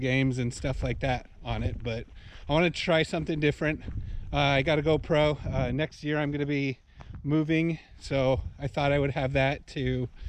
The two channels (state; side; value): identical; both; correlation 1.00